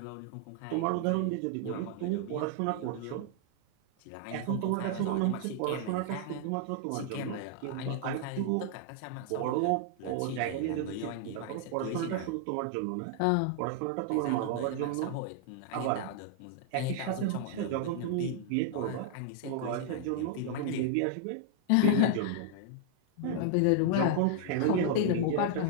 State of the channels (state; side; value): different; both; correlation -0.01